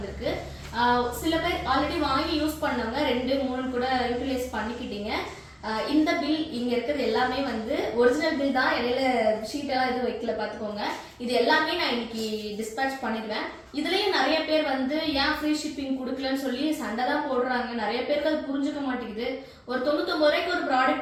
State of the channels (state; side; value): identical; both; correlation 1.00